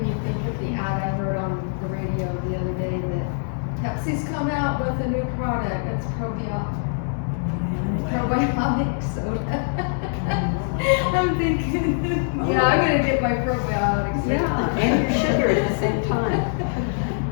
me think of the ad I heard on the radio the other day that Pepsi's come out with a new product. It's probiotic soda. I'm thinking, yeah, I'm gonna get my probiotics. Yeah, and your sugar at the same time.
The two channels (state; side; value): silent; right; 63 dB below the other